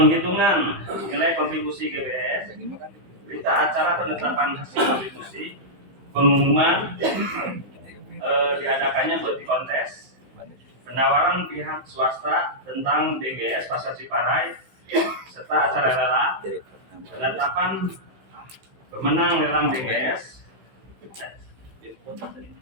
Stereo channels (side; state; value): left; late; 16 ms